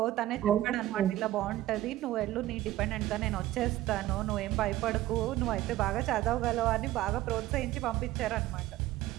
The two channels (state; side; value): quieter; left; 15.2 dB